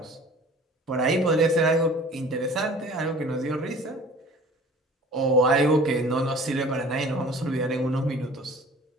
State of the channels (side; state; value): both; normal; correlation 0.46